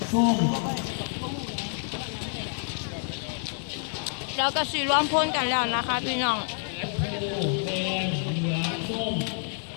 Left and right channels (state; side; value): silent; right; digital silence